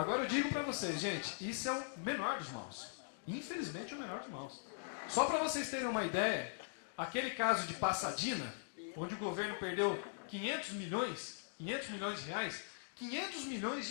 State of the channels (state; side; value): silent; right; digital silence